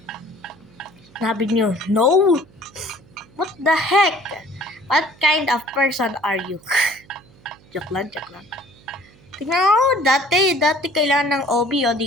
Sabi nyo, no? What the heck? What kind of person are you? Joke lang. Tingnan mo, dati kailangan ng OB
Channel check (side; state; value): right; noise; hum, 27 dB below the sound